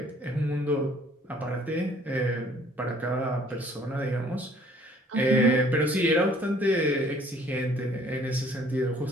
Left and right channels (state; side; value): normal; both; correlation 0.58